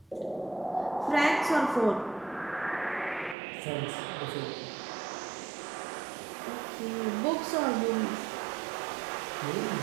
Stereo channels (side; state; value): left; drops out; at 3.4 s